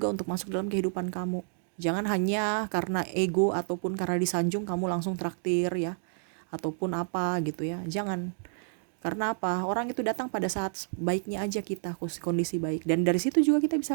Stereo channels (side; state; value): left; silent; digital silence